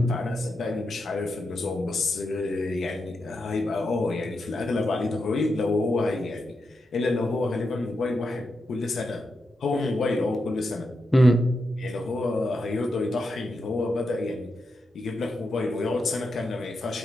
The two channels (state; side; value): normal; both; correlation 0.86